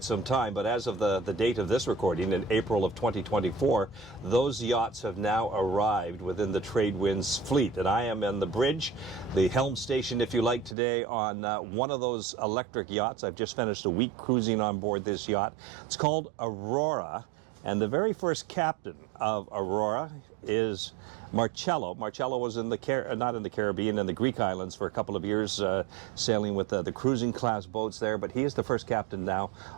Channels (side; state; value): left; drops out; at 10.8 s